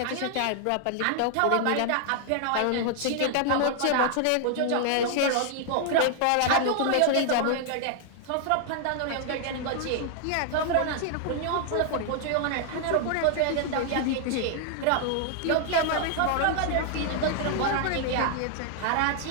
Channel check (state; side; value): different; both; correlation 0.00